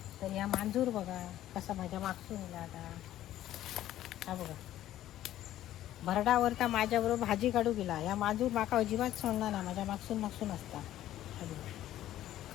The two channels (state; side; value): quieter; right; 13.2 dB